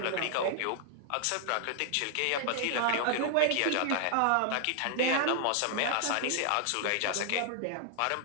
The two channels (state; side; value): different; both; correlation 0.00